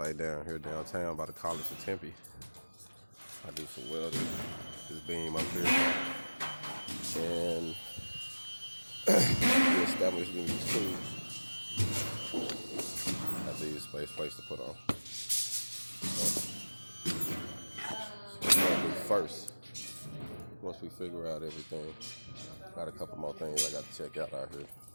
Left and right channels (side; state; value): both; inverted; correlation -1.00